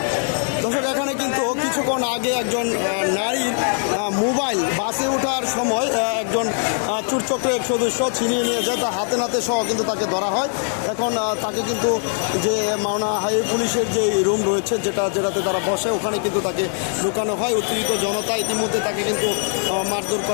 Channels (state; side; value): silent; right; 60 dB below the other